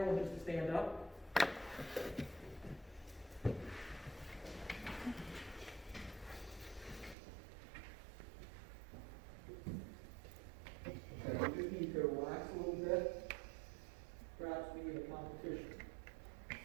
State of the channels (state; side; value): drops out; left; at 7.2 s